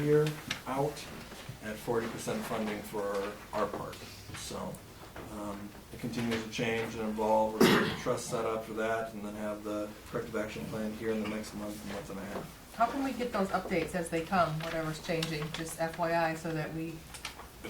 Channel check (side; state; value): both; identical; correlation 1.00